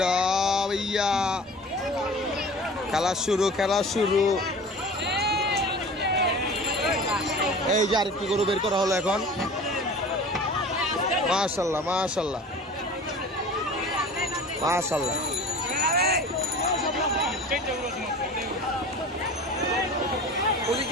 খেলা শুরু। এই যে আরেকটি গরু বের করা হলো এখন। মাশাআল্লাহ মাশাআল্লাহ মাশাআল্লাহ।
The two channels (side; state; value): both; normal; correlation 0.40